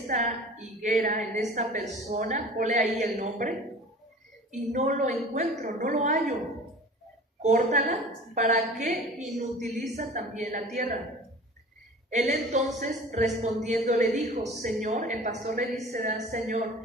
higuera, en esta persona, ponle ahí el nombre, y no lo encuentro, no lo hallo. Córtala, ¿para qué inutiliza también la tierra? Él entonces respondiendo le dijo: Señor, el pastor le dice:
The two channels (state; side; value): normal; both; correlation 0.41